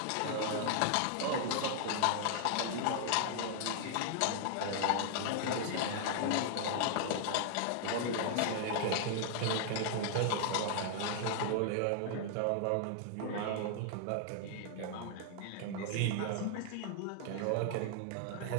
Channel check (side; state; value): both; different; correlation -0.01